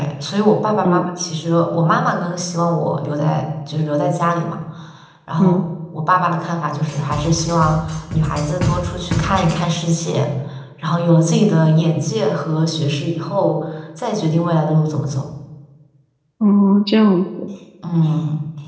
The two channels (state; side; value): identical; both; correlation 1.00